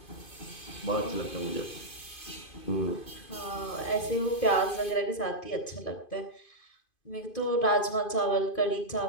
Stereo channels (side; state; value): right; late; 2.5 ms